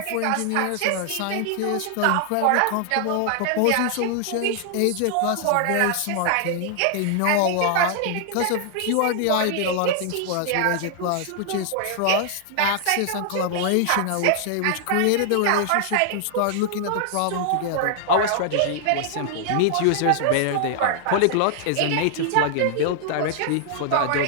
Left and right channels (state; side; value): different; both; correlation 0.00